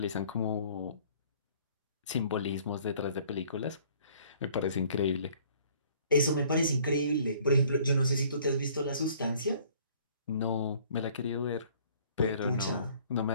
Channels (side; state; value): both; inverted; correlation -0.56